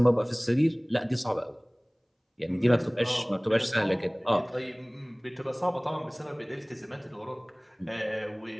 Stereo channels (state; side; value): identical; both; correlation 1.00